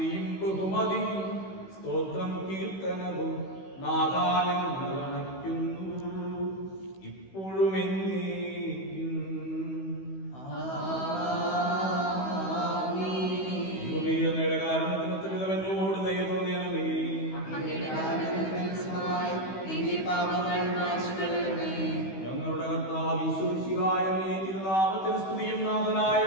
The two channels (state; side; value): late; right; 16 ms